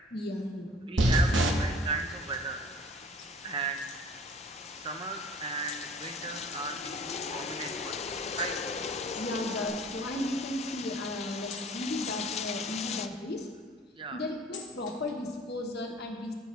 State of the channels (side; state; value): both; normal; correlation 0.49